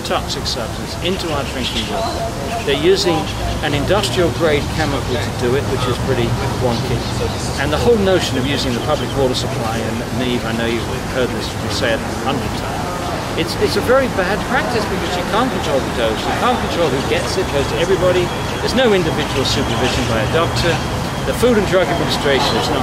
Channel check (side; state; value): both; identical; correlation 1.00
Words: toxic substance into our drinking water. They're using an industrial-grade chemical to do it, which is pretty wonky. And the whole notion of using the public water supply, and Niamh, I know you've heard this said 100 times, it's a very bad practice because you can't control the dose, you can't control who gets it, it goes to everybody. There's no individual supervision by a doctor. The Food and Drug Administration is